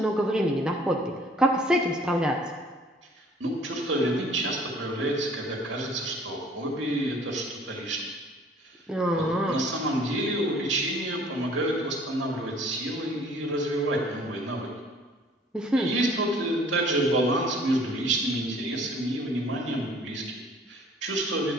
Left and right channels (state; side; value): normal; both; correlation 0.54